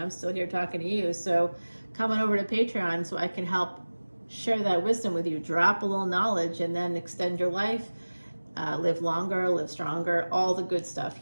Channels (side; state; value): both; inverted; correlation -1.00